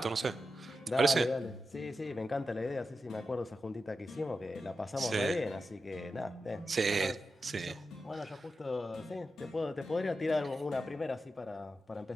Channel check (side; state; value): both; normal; correlation 0.90